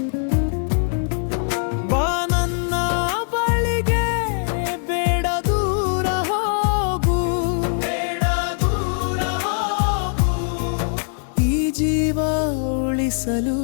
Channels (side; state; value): right; silent; 65 dB below the other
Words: ಬಾ ನನ್ನ ಬಳಿಗೆ, ಬೇಡ ದೂರ ಹೋಗು, ಬೇಡ ದೂರ ಹೋಗು. ಈ ಜೀವ ಉಳಿಸಲು